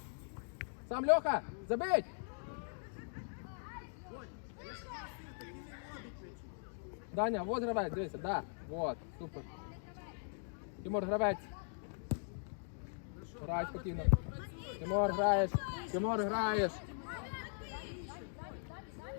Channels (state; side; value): silent; right; digital silence